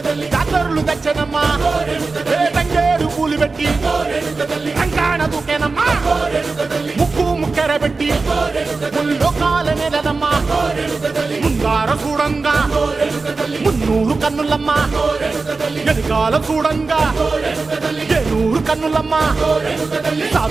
జాతరులు తెచ్చనమ్మా తంగేరు పూలు పెట్టి రంగాణ దూకేనమ్మా ముక్కు ముక్కెర పెట్టి ముల్లోకాల నెలనమ్మా ముందార చూడంగా మున్నూరు కన్నులమ్మా ఎనకాల చూడంగా ఏనూరు కన్నులమ్మా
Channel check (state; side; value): quieter; left; 4.0 dB